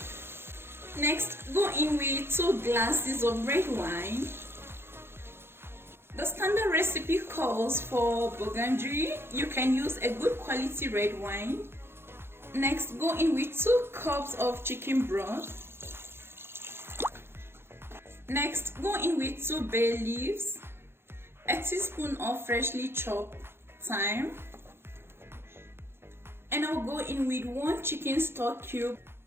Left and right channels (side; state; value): left; late; 0.11 ms